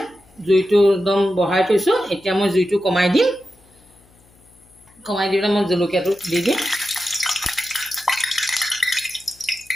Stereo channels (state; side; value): noise; left; hum, 30 dB below the sound